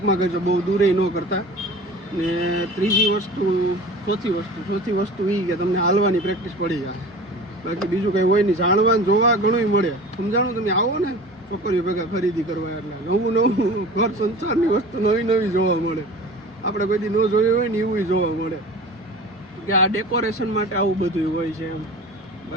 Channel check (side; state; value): both; normal; correlation 0.38